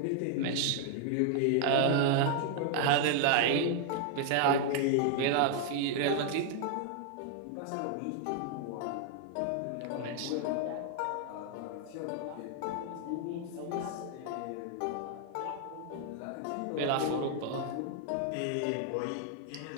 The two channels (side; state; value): both; different; correlation 0.00